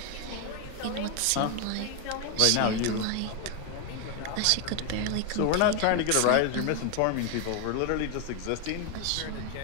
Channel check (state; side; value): different; both; correlation 0.01